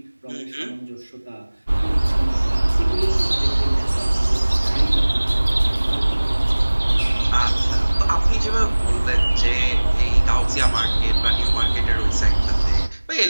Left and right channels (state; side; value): inverted; both; correlation -1.00